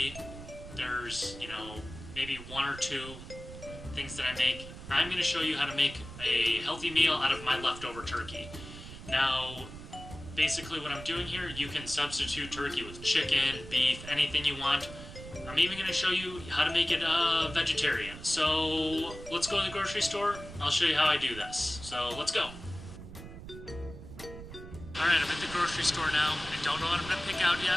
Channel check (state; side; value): noise; right; rumble, 13 dB below the sound